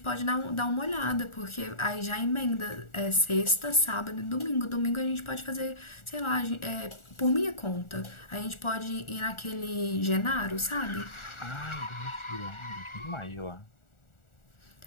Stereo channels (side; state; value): right; late; 1.4 ms